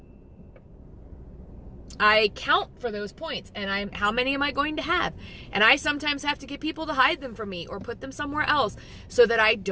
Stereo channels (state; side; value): identical; both; correlation 1.00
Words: count for those points, and how many am I going to have? And I sometimes have to get people to hide them from me or put them somewhere else so that I